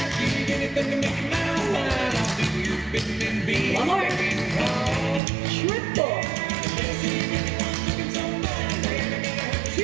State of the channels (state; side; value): drops out; left; at 5.2 s